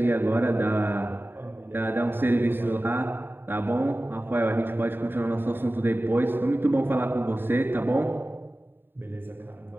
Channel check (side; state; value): left; late; 0.098 ms